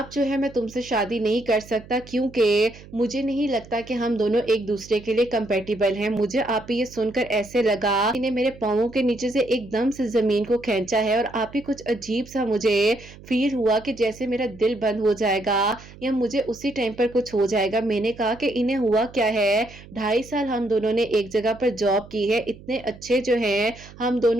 جو ہے میں تم سے شادی نہیں کر سکتا، کیونکہ مجھے نہیں لگتا کہ ہم دونوں ایک دوسرے کے لیے کمپیٹیبل ہیں۔ مجھے آپ ہی یہ سن کر ایسے لگا انہیں میرے پاؤں کے نیچے سے ایک دم سے زمین کو کھینچا ہے، اور آپ ہی کچھ عجیب سا مجھے فیل ہوا کہ جیسے میرا دل بند ہو جائے گا یا مجھے اسی ٹائم پر کچھ ہو جائے گا۔ میں نے کہا کہ انہیں ہوا کیا ہے، 2.5 سال ہم دونوں نے ایک جگہ پر جاب کی ہے، اتنے اچھے جو ہیں ہم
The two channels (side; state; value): right; noise; hum, 19 dB below the sound